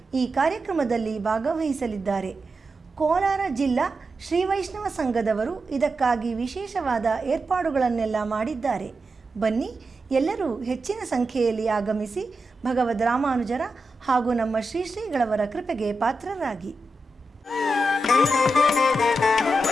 ಈ ಕಾರ್ಯಕ್ರಮದಲ್ಲಿ ಭಾಗವಹಿಸಲಿದ್ದಾರೆ. ಕೋಲಾರ ಜಿಲ್ಲಾ ಶ್ರೀ ವೈಷ್ಣವ ಸಂಘದವರು ಇದಕ್ಕಾಗಿ ವಿಶೇಷವಾದ ಏರ್ಪಾಡುಗಳನ್ನೆಲ್ಲ ಮಾಡಿದ್ದಾರೆ. ಬನ್ನಿ ಎಲ್ಲರೂ ಹೆಚ್ಚಿನ ಸಂಖ್ಯೆಯಲ್ಲಿ ಆಗಮಿಸಿ ಭಗವದ್ ರಾಮಾನುಜರ ಹಾಗೂ ನಮ್ಮ ಶ್ರೀ ಶ್ರೀಗಳವರ ಕೃಪೆಗೆ ಪಾತ್ರರಾಗಿ.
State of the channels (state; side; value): normal; both; correlation 0.89